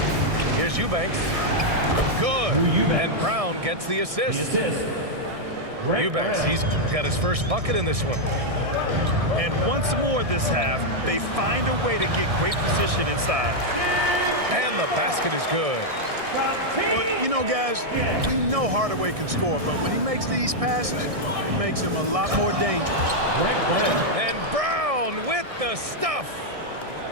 Here's Eubanks. Good. And Brown gets the assist. Eubanks, he's got his first bucket in this one. And once more this half, they find a way to get great position inside. And the basket is good. Well, you know, guys, we know Hardaway can score, but when he makes these passes, it makes him a lot more dangerous. And Brown with the stuff.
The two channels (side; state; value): left; late; 1.6 ms